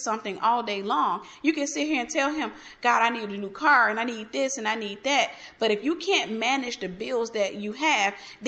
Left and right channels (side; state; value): both; identical; correlation 1.00